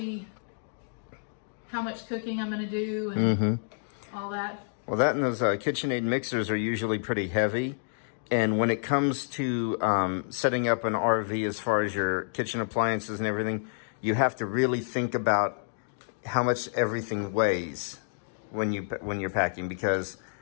how much cooking I'm going to do and all that. Well, that and those KitchenAid mixers are usually pretty heavy. And when it comes to setting up an RV as far as your kitchen appliances and everything, you have to really think about how much everything weighs when you're packing, because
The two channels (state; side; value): silent; right; digital silence